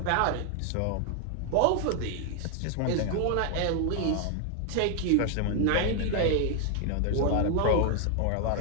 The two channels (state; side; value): different; both; correlation 0.01